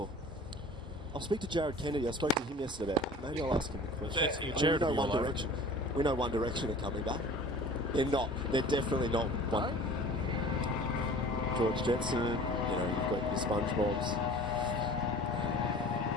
I'll speak to Jared Kennedy. I spoke to him yesterday about it. Maybe I'll ask him a question. We know One Direction. We know One Direction are coming back. They're not. They're definitely not one. George Jetson, you know, you've got your SpongeBobs.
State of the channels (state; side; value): normal; both; correlation 0.43